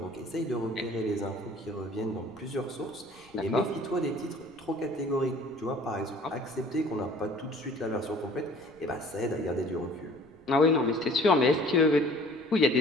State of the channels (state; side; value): noise; right; rumble, 27 dB below the sound